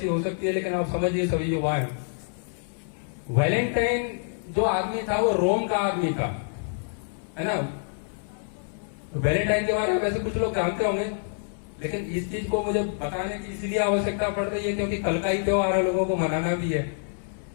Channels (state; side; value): silent; right; 60 dB below the other